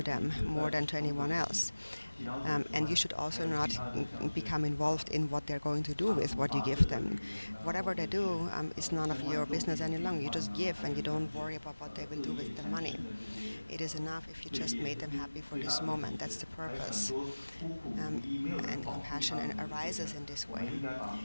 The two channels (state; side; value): inverted; both; correlation -1.00